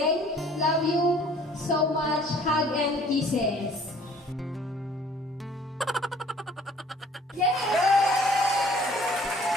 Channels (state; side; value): normal; both; correlation 0.55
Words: Love you so much. Hug and kisses.